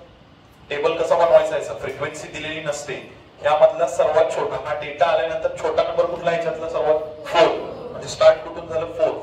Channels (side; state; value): both; identical; correlation 1.00